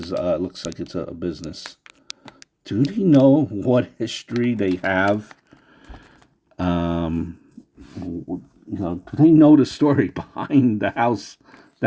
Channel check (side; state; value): both; identical; correlation 1.00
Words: looks like it's a business. Do they know what history they have? Do they know the story behind the house